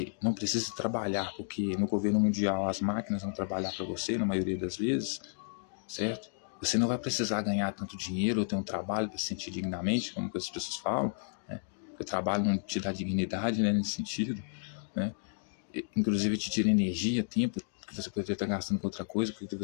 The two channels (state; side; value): silent; right; digital silence